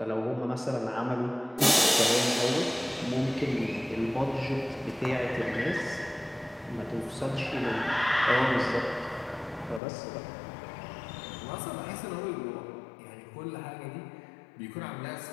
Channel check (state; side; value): drops out; right; at 9.8 s